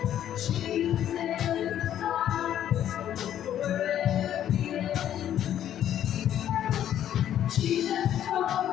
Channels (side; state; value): right; quieter; 10.9 dB